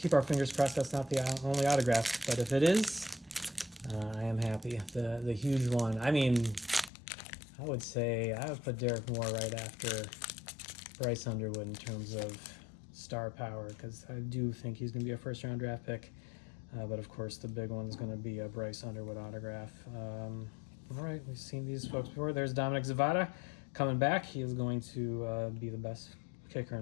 our fingers crossed that's not the only autograph, but if it is, I am happy. The huge one. I mean, I would say I would put Derek Moore right after Bryce Underwood in terms of star power, because I do think he's going to be a first-round draft pick. But of course, the big one is going to be a Bryce Underwood autograph. All right, we've seen these folks before. There's Dominic Zavada coming back. He is going to be the best kicker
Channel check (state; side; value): drops out; right; at 6.9 s